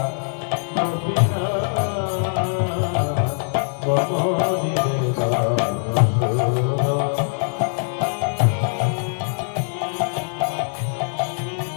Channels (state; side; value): silent; right; digital silence